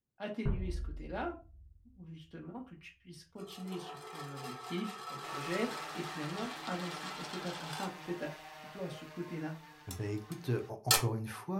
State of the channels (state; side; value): identical; both; correlation 1.00